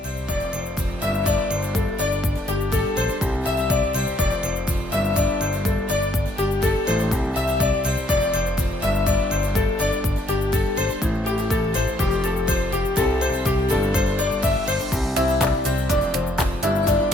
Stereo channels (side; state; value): both; normal; correlation 0.69